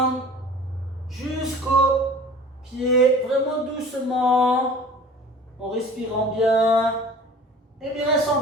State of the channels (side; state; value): both; normal; correlation 0.44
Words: jusqu'au pied, vraiment doucement, en respirant bien. Et bien reste en